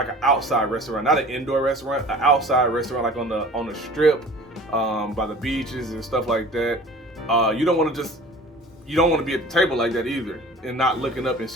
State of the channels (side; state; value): both; normal; correlation 0.44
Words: an outside restaurant, not an indoor restaurant, an outside restaurant, like on the strip, by the beaches and stuff like that. You don't want to be at the table like that either and not looking up and